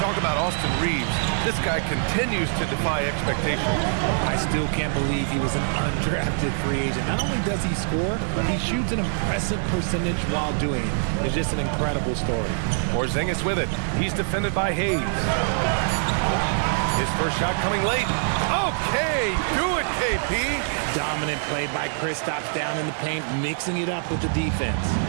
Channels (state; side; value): silent; left; digital silence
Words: about Austin Reeves, this guy continues to defy expectations. I still can't believe he was an undrafted free agent. Not only does he score, he shoots an impressive percentage while doing it. It's just an incredible story. Porzingis with it. He's defended by Hayes. His first shot coming late. Okay, do it, KP. Dominant play by Kristaps down in the paint, mixing it up with the defense.